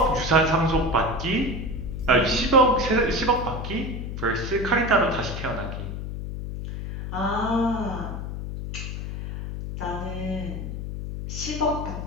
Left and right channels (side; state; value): left; noise; hum, 6 dB below the sound